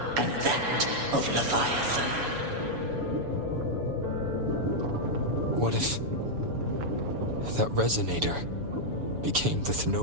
and that of Leviathan. What if that Resonator became the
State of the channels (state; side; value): late; left; 7.0 ms